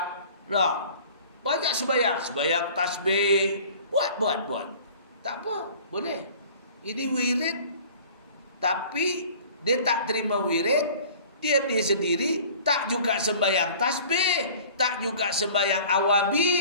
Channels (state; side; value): inverted; both; correlation -0.47